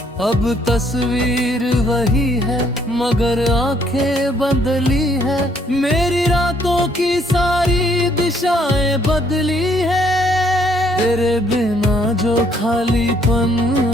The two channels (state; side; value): normal; both; correlation 0.66